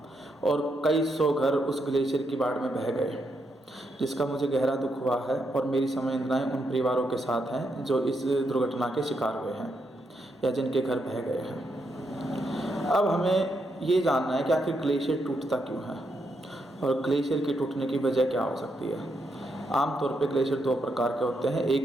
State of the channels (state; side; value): normal; both; correlation 0.80